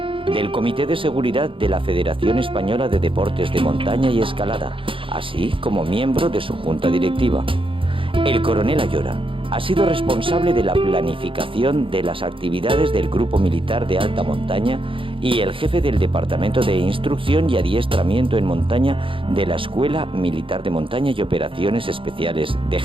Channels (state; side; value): late; left; 0.25 ms